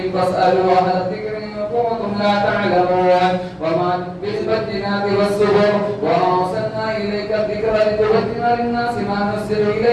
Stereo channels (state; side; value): identical; both; correlation 1.00